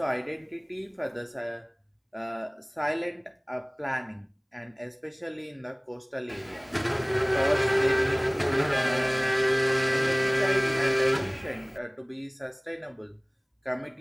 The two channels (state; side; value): identical; both; correlation 1.00